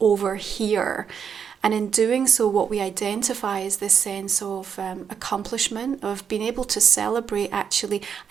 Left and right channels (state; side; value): quieter; left; 7.2 dB